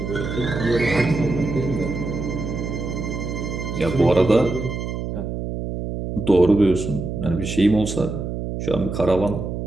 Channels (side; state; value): right; noise; hum, 5 dB below the sound